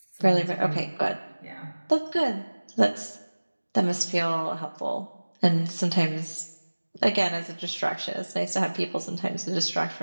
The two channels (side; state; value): both; inverted; correlation -1.00